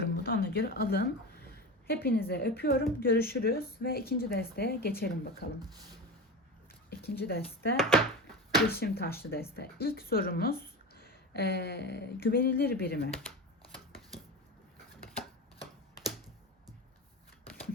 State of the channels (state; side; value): normal; both; correlation 0.25